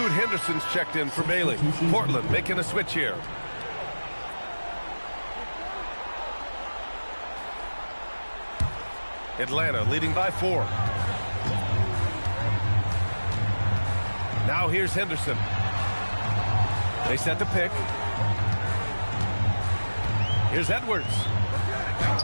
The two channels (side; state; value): both; inverted; correlation -1.00